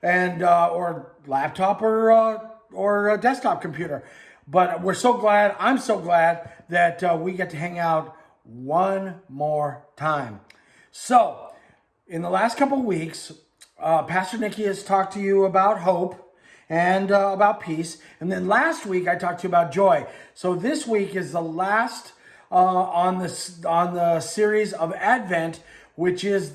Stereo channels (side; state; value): both; identical; correlation 1.00